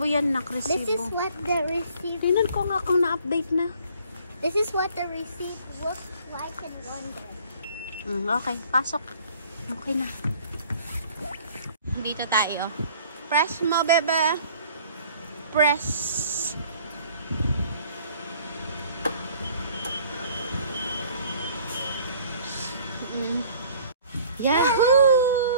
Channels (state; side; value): inverted; both; correlation -0.54